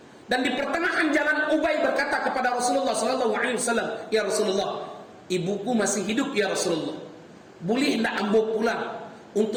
Dan di pertengahan jalan Ubay berkata kepada Rasulullah SAW, "Ya Rasulullah, ibuku masih hidup ya Rasulullah. Boleh tidak ambo pulang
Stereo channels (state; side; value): identical; both; correlation 1.00